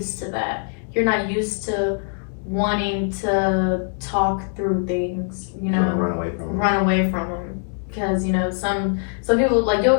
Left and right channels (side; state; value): right; silent; 59 dB below the other